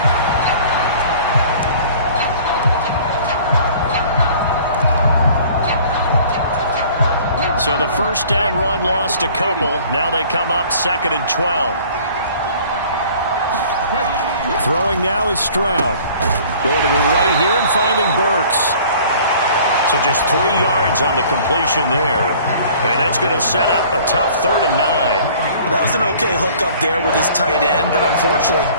So the 1st down run lost a couple. Now they come up 2nd and 12. Throwing now is Stroud. Going to the right here and finding Burks. So just 3 yards on the completion there. And that's going to set up a tough 3rd and 9. That was an okay hook up there with his tight end, but unfortunately,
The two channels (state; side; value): inverted; both; correlation -0.51